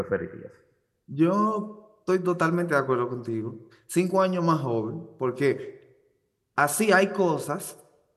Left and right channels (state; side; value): identical; both; correlation 1.00